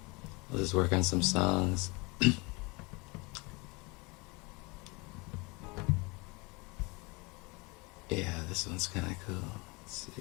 I'll just work on some songs. Yeah, this one's kind of cool. Let's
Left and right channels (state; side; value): quieter; right; 27.2 dB